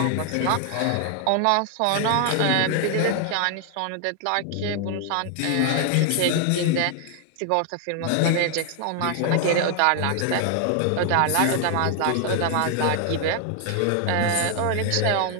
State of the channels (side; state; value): both; different; correlation 0.00